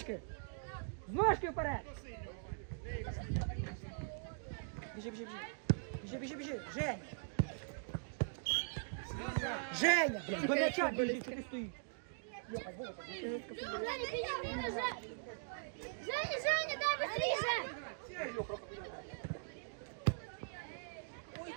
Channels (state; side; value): silent; left; digital silence